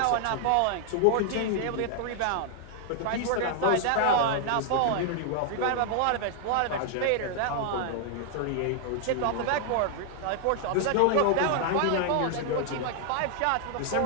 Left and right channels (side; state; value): both; different; correlation 0.00